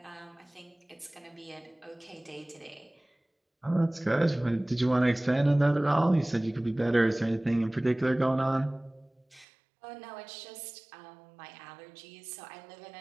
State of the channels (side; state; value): left; drops out; at 9.5 s